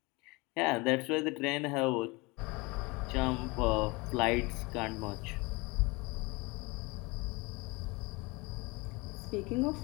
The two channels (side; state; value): right; quieter; 25.7 dB